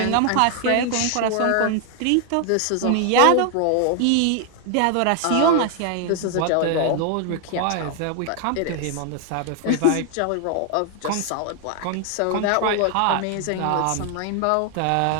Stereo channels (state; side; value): different; both; correlation 0.00